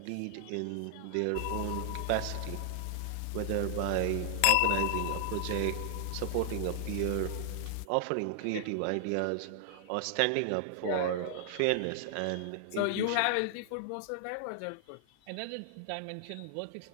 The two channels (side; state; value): both; different; correlation 0.00